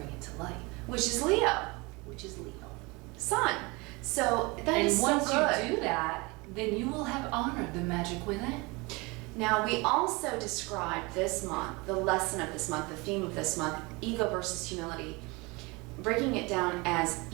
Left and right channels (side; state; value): left; quieter; 25.8 dB